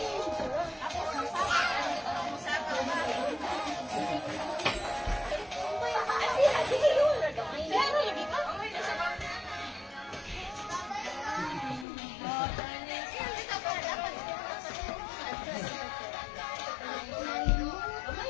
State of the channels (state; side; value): drops out; right; at 11.9 s